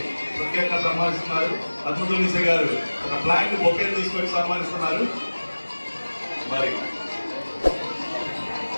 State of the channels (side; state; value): both; inverted; correlation -1.00